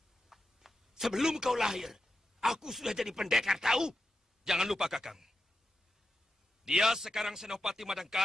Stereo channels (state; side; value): normal; both; correlation 0.88